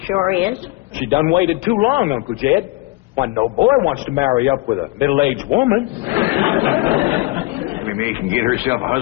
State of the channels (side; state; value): right; quieter; 21.2 dB